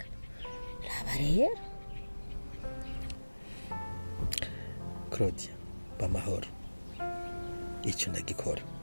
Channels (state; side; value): inverted; both; correlation -1.00